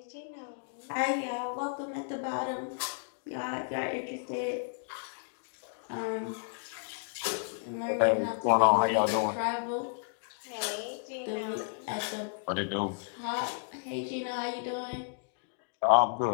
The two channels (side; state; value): right; silent; digital silence